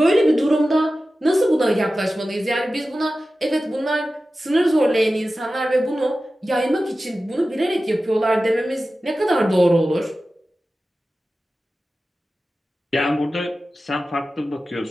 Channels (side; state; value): both; normal; correlation 0.95